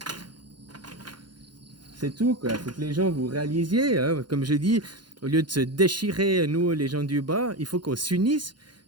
C'est tout, quoi. Faut que les gens vous réalisiez, hein. Comme je dis, au lieu de se déchirer, nous, les gens du bas, il faut qu'on s'unisse,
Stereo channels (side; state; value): left; late; 0.71 ms